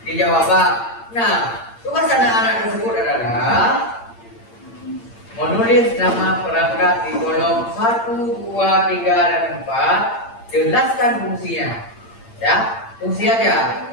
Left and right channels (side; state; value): right; late; 8.8 ms